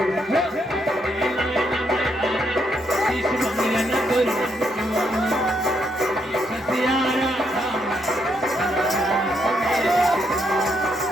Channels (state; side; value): normal; both; correlation 0.76